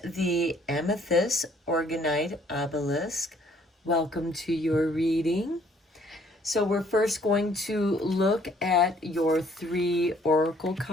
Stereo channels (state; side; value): normal; both; correlation 0.61